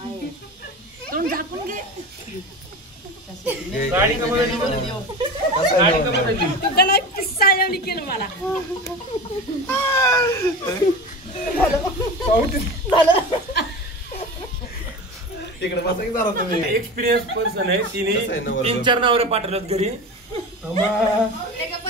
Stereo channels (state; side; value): normal; both; correlation 0.29